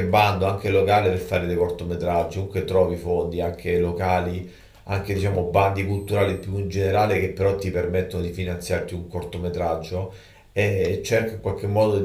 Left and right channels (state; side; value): identical; both; correlation 1.00